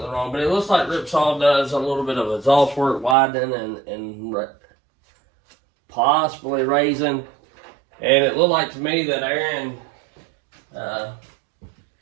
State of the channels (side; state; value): left; drops out; at 3.2 s